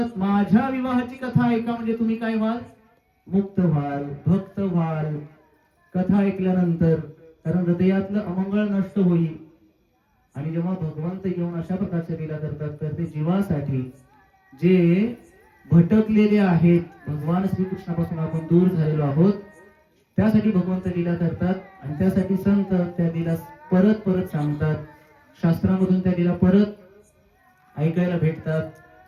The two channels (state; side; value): identical; both; correlation 1.00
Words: माझ्या विवाहाची कथा ऐका म्हणजे तुम्ही काय व्हाल? मुक्त व्हाल, भक्त व्हाल. कथा ऐकल्यानंतर. कारण हृदयातलं अमंगळ नष्ट होईल. आणि जेव्हा भगवंत येऊन अशा प्रकारच्या लीला करतात तर ते जीवासाठी, जे भटकलेले आहेत, भगवान श्रीकृष्णापासून आपण दूर झालेलो आहोत, त्यासाठी भगवंत लीला करतात. आणि त्यासाठी संत त्या लीला परत परत सांगतात. शास्त्रामधून त्या लीला परत ऐकायला भेटतात.